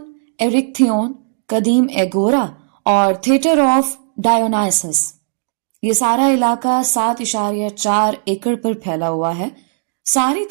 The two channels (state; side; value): silent; left; digital silence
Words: ایرکتھیون، قدیم ایگورا اور تھیٹر آف ڈایونائسس۔ یہ سارا علاقہ 7.4 ایکڑ پر پھیلا ہوا ہے۔ ساری